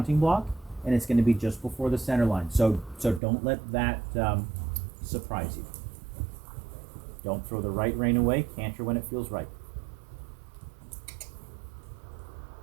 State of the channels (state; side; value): drops out; left; at 3.2 s